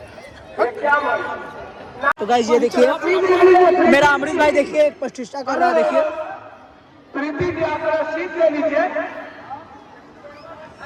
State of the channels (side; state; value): both; identical; correlation 1.00